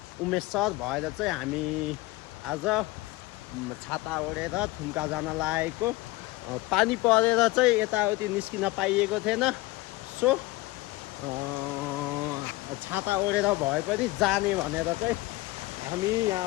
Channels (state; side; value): quieter; right; 20.1 dB